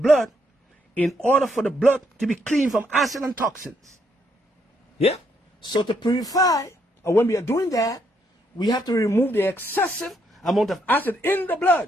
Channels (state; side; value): normal; both; correlation 0.74